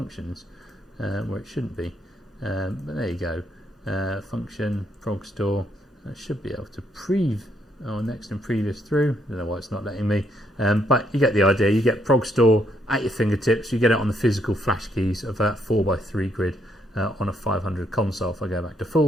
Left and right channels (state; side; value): normal; both; correlation 0.73